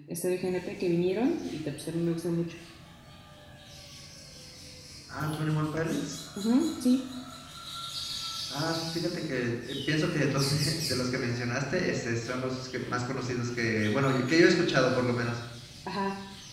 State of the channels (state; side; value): identical; both; correlation 1.00